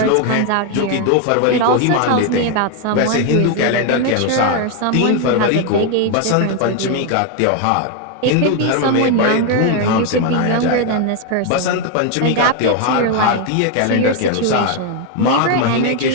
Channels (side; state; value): both; different; correlation 0.01